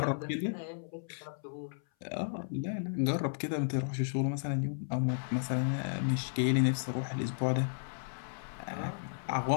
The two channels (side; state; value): right; silent; 55 dB below the other